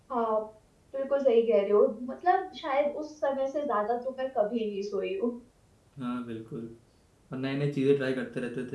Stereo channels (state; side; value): identical; both; correlation 1.00